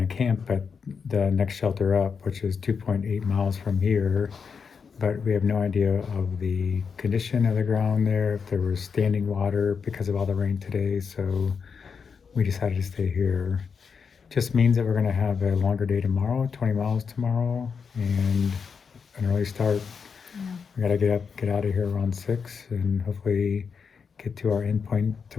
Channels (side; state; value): right; quieter; 5.9 dB